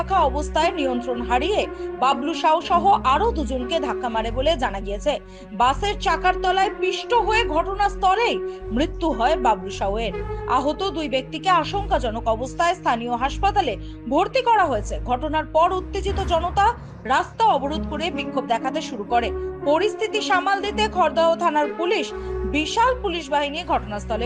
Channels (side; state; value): both; identical; correlation 1.00